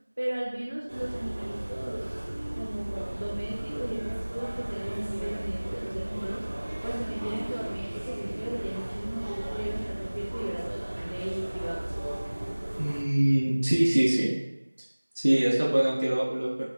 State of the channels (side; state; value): both; inverted; correlation -1.00